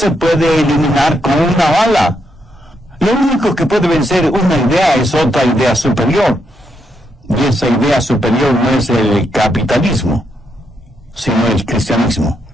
puede eliminar con una bala. Lo único que puede vencer una idea es otra idea superior. Y esa idea superior no es el capitalismo, sino el cristianismo.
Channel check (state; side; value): normal; both; correlation 0.79